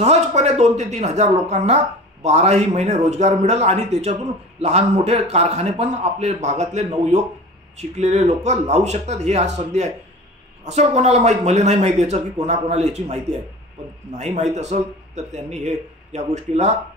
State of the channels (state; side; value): normal; both; correlation 0.37